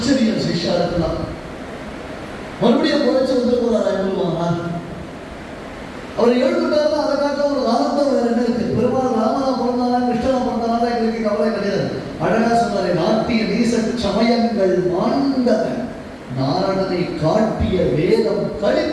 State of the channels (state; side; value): identical; both; correlation 1.00